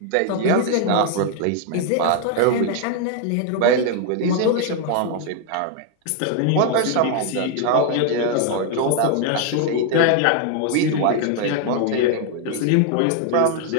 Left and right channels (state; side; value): different; both; correlation 0.00